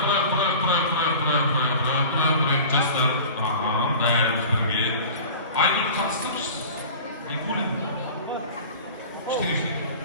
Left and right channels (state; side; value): inverted; both; correlation -0.39